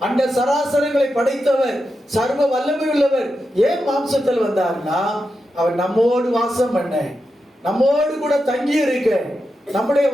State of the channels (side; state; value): both; normal; correlation 0.88